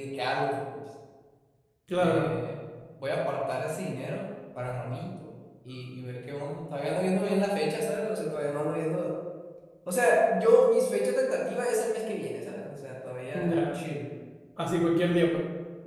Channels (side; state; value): both; identical; correlation 1.00